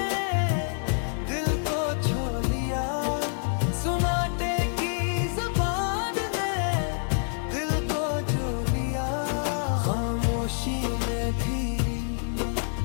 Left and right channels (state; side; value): silent; right; digital silence